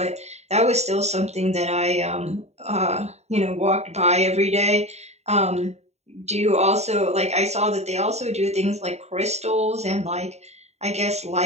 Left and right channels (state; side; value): late; left; 0.32 ms